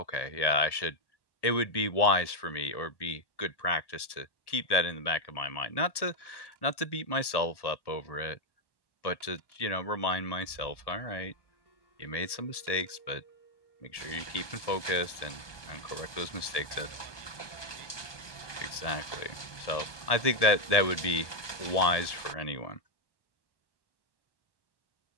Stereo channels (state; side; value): late; right; 1.1 ms